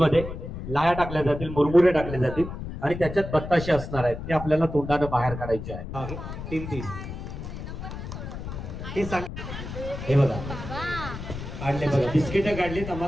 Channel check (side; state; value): left; noise; rumble, 8 dB below the sound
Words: लाया टाकल्या जातील, मुरमुरे टाकले जातील आणि त्याच्यात बत्ताशे असणार आहेत. ते आपल्याला तोंडानं बाहेर काढायचे आहे. 3 हे सांग. हे बघा काढले बघा. बिस्किट काढलीत.